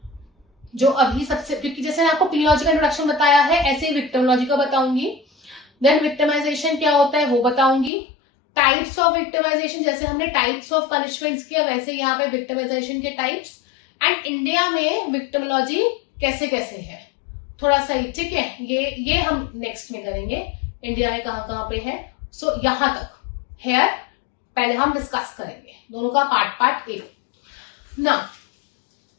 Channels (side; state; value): right; drops out; at 7.9 s